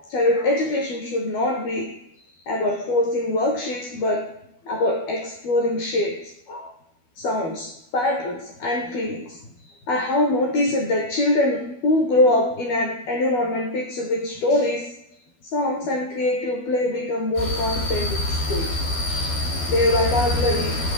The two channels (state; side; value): late; right; 12 ms